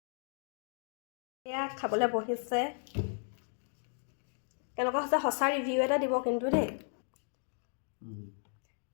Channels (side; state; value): right; silent; 54 dB below the other